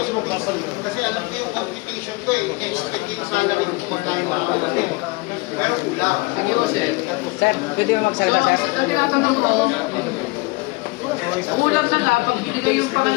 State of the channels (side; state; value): right; quieter; 24.9 dB